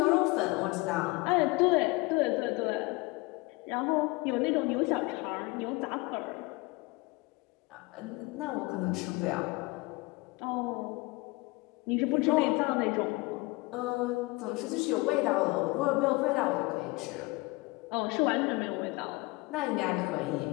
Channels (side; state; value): right; quieter; 23.7 dB